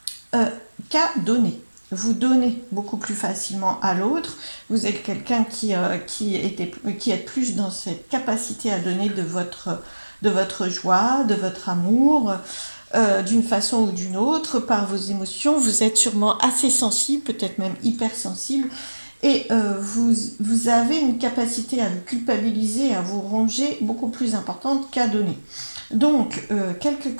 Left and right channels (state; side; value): inverted; both; correlation -1.00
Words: qu'à donner. Vous donnez beaucoup plus facilement à l'autre. Vous êtes quelqu'un qui est plus dans cette capacité à donner de votre joie, de votre amour, d'une façon ou d'une autre, par vos émotions. Vous êtes sûrement assez sensible, peut-être même hypersensible. Et vous avez une capacité à vous culpabiliser, à vous ronger beaucoup plus importante qu'à donner. Donc, quelques